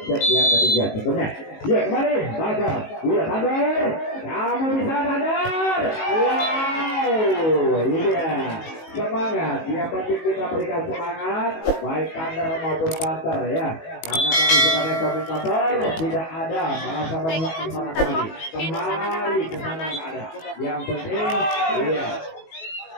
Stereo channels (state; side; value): late; right; 19 ms